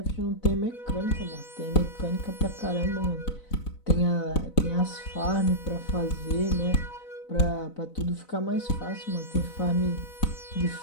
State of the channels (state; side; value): late; right; 4.0 ms